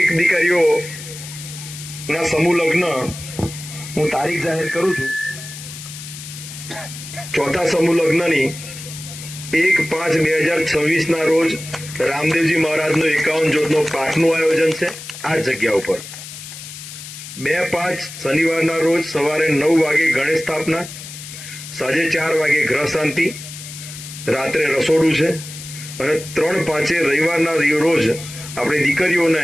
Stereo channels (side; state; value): left; noise; hiss, 12 dB below the sound